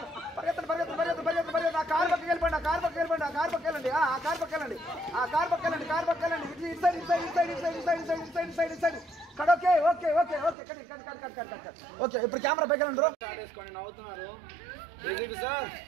కార్ పక్కకి వెళ్ళిపోండి. కార్ పక్కకి వెళ్ళండి. ఓకే ఇప్పుడు కెమెరా పైకి వెళ్ళండి. నవ్వుతున్నారు సార్.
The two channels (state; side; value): drops out; left; at 10.6 s